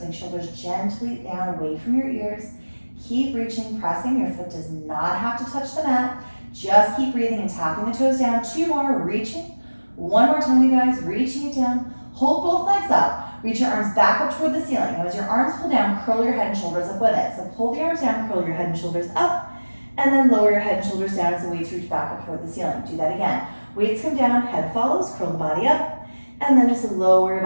shoulders gently down away from your ears. Keep reaching, pressing. Your foot does not have to touch the mat. Just keep breathing and tapping the toes down. 2 more, reaching. 1 more time, you guys. Reaching it down. Hold both legs up. Reach your arms back up toward the ceiling. Now as your arms pull down, curl your head and shoulders up with it. So pull the arms down, curl your head and shoulders up, and then lower your head and shoulders down as the weights reach back up toward the ceiling. Do that again. Weights come down, head follows, curl the body up, and then just lower your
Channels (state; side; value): inverted; both; correlation -1.00